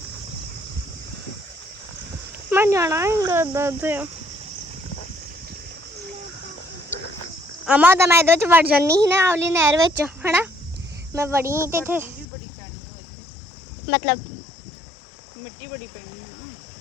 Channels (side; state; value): right; drops out; at 12.2 s